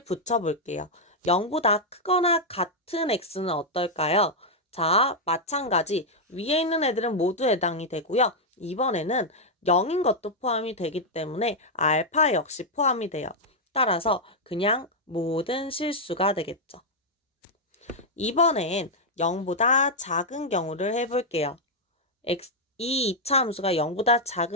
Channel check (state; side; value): normal; both; correlation -0.02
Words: 붙여볼게요. 0보다 크거나 같은 x는 어떨까요? 자, 마찬가지 위에 있는 애들은 모두 해당이 되고요. 이번에는 0인 것도 포함이 되기 때문에 알파 역시 포함이 돼요. 따라서 그냥 모든 실수가 되겠죠. 이번엔 0보다 작은 경우를 해볼게요. 이 2차 함수가 0보다